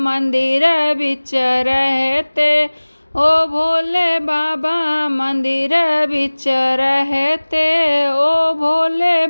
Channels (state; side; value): inverted; both; correlation -1.00